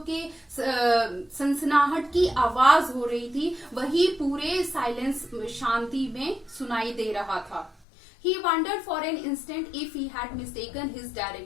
के सनसनाहट की आवाज हो रही थी वही पूरे साइलेंस, शांति में सुनाई दे रहा था. He wondered for an instant if he had mistaken his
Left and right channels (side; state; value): right; drops out; at 7.9 s